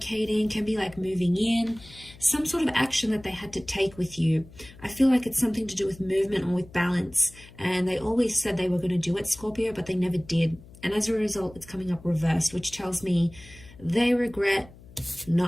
can be like moving in, some sort of action that they had to take with you. I feel like it's something to do with movement or with balance. And they always said they were going to do it, Scorpio, but they never did. And as a result, it's coming up reversed, which tells me they regret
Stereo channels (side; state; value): left; noise; hum, 21 dB below the sound